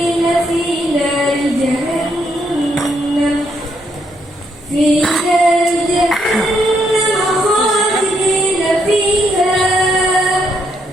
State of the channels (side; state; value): both; normal; correlation 0.75